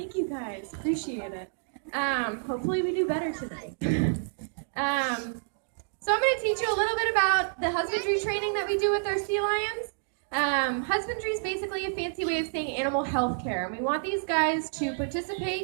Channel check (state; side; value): silent; left; digital silence